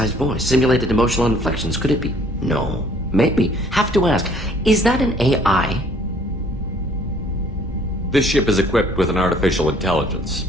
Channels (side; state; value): both; normal; correlation 0.58